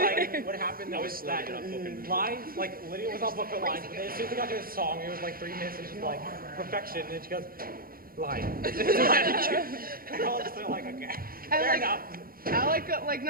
what happened was that line, like Lydia was off book for lines, but then as soon as we got to a song, it was like 3 minutes and she's like perfection, and then she goes line. And all of a sudden like okay, fair enough. Alec, like,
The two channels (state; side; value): late; left; 0.42 ms